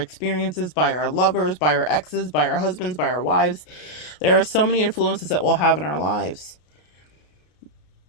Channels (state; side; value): late; right; 33 ms